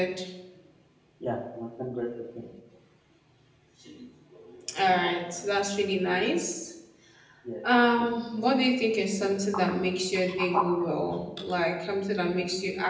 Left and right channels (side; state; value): both; identical; correlation 1.00